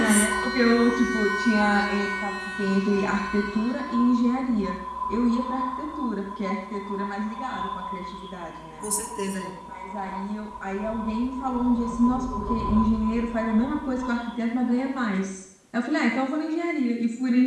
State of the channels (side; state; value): both; identical; correlation 1.00